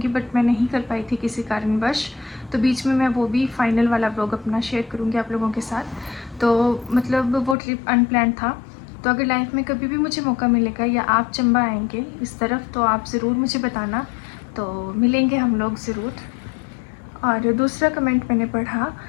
बट मैं नहीं कर पाई थी किसी कारणवश। तो बीच में मैं वो भी फाइनल वाला व्लॉग अपना शेयर करूँगी आप लोगों के साथ। तो मतलब वो ट्रिप अनप्लान्ड था। तो अगर लाइफ में कभी भी मुझे मौका मिलेगा या आप चंबा आएंगे इस तरफ, तो आप ज़रूर मुझे बताना, तो मिलेंगे हम लोग ज़रूर। और दूसरा कमेंट मैंने पढ़ा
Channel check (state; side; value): drops out; right; at 7.6 s